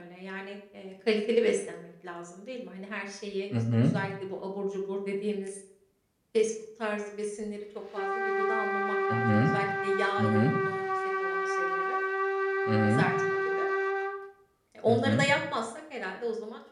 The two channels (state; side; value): identical; both; correlation 1.00